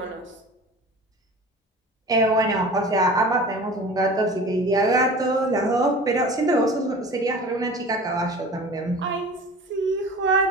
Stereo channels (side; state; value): both; normal; correlation 0.39